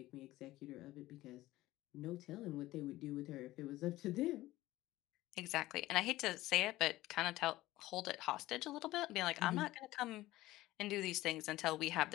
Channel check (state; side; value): quieter; right; 16.9 dB